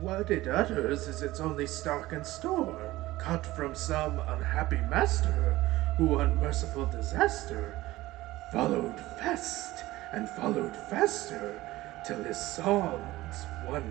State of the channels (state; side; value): quieter; left; 17.6 dB